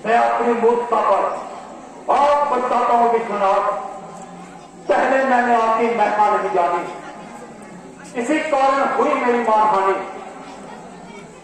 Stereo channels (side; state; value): both; identical; correlation 1.00